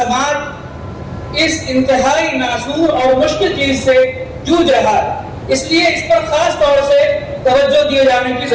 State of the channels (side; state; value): both; identical; correlation 1.00